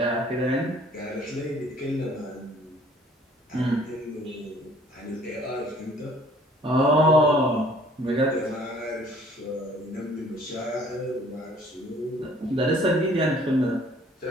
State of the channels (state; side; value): normal; both; correlation 0.56